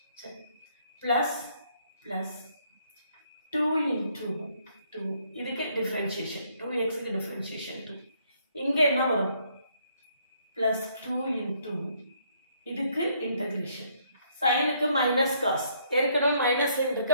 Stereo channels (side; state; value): both; inverted; correlation -0.68